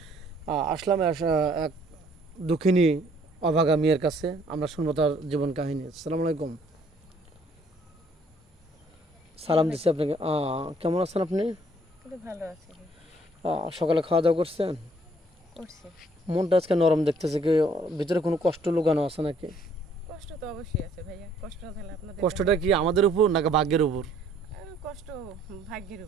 আসলাম এক দুঃখিনী অভাগা মেয়ের কাছে। আমরা শুনবো তার জীবন কাহিনী। আসসালামু আলাইকুম। সালাম দিচ্ছি আপনাকে। কেমন আছেন আপনি? কিন্তু ভালো আছি, সকালে খাওয়া দাওয়া করছেন? করছি। মনটা আজকে নরম দেখতেছে, কি ভিতরে কোনো কষ্ট লুকানো আছে নাকি? কষ্ট তো অবশ্যই আছে ভাইয়া, কষ্ট না থাকলে আপনাদের কষ্টটা কি আমাদের উপর নাকি ভাগ্যের উপর? কষ্ট ভাগ্যের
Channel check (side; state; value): both; normal; correlation 0.62